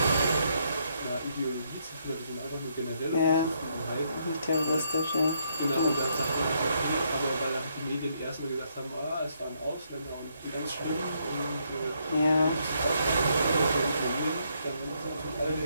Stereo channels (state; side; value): inverted; both; correlation -0.74